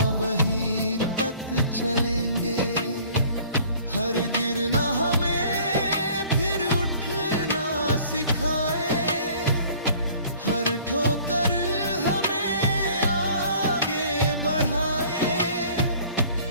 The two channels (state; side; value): inverted; both; correlation -0.52